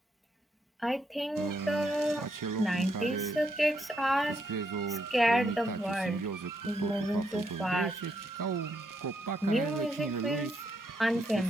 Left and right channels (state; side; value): normal; both; correlation 0.77